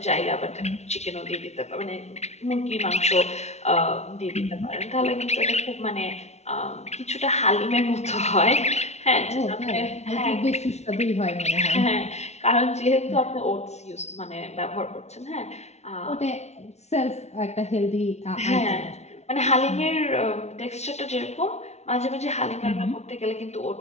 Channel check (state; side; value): late; right; 0.32 ms